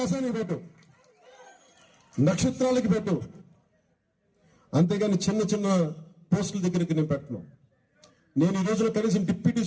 పెట్టు, నక్షత్రాలకి పెట్టు, అంతేగాని చిన్న చిన్న పోస్టుల దగ్గరికి నేను పెట్టను. నేను ఈ రోజున కనీసం డిప్యూటీ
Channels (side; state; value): both; identical; correlation 1.00